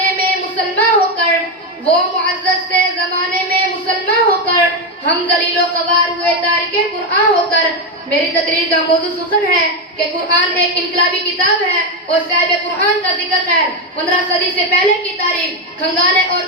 میں مسلمان ہو کر ہم ذلیل و خوار ہوئے تارک قرآن ہو کر میری تقریر کا موضوع سخن ہے کہ قرآن ایک انقلابی کتاب ہے اور صاحب قرآن کا ذکر ہے 15 صدی سے پہلے کی تاریخ کھنگالیں اور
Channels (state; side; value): normal; both; correlation 0.08